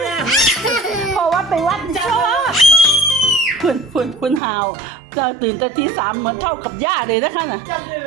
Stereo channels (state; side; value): drops out; left; at 4.4 s